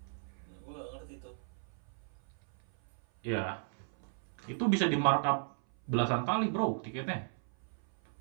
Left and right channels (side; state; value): left; silent; 54 dB below the other